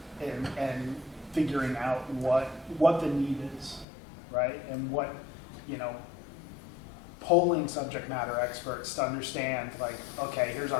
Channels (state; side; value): drops out; right; at 3.9 s